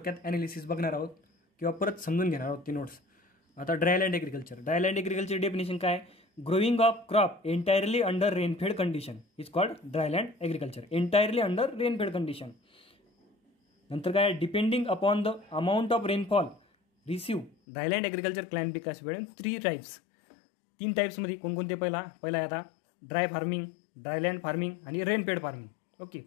ॲनालिसिस बघणार आहोत किंवा परत समजून घेणार आहोत ती नोट्स। आता ड्रायलँड ॲग्रिकल्चर डेफिनेशन काय? Growing of crop entirely under rainfed condition is called dryland agriculture. Entirely under rainfed condition. नंतर काय? Depending upon the amount of rainfall receive dryland agriculture classified in 3 types. 3 टाइप्समध्ये कोणकोणते? पहिला आहे आता dry farming, dryland farming आणि rainfed farming. Okay,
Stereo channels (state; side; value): drops out; right; at 17.5 s